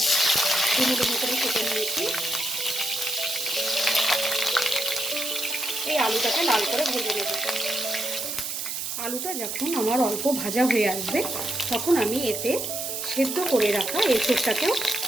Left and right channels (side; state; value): right; noise; hiss, 4 dB below the sound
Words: ডুমো ডুমো করে কেটে নিয়েছি। এই আলুটাকে লাল করে ভেজে নেব। আলুটা যখন আমার অল্প ভাজা হয়ে আসবে তখন আমি এতে সেদ্ধ করে রাখা এঁচোড়টাকেও